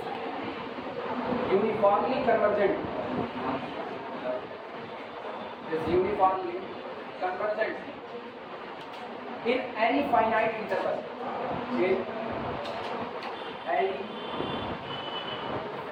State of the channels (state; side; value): identical; both; correlation 1.00